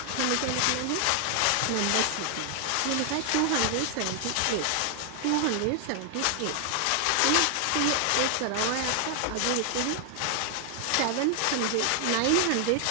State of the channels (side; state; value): both; different; correlation 0.00